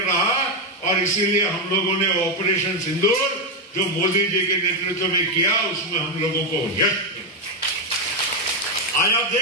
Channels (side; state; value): both; normal; correlation 0.05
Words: रहा. और इसीलिए हम लोगों ने ऑपरेशन सिंदूर जो मोदी जी के नेतृत्व में किया, उसमें हम लोगों को यश मिला. आज आप